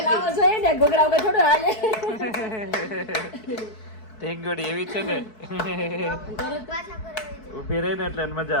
લાવવો જોઈએ ને ઘૂઘરા વગર થોડું હાલે ઢીંગોડી એવી છે ને પાછા કરે ઊભી રહી ને એટલે એને મજા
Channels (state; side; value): late; right; 4.6 ms